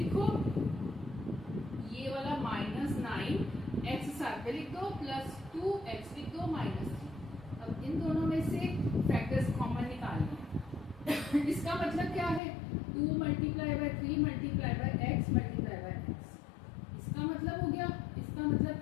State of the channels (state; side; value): drops out; right; at 12.4 s